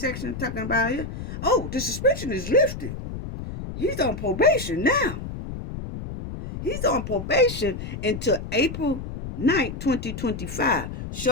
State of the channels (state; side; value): noise; left; rumble, 8 dB below the sound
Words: talking about it, oh, the suspension is lifted. He's on probation now. He's on probation until April 9th, 2025.